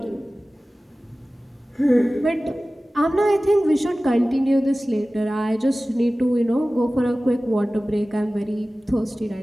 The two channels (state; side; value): normal; both; correlation 0.97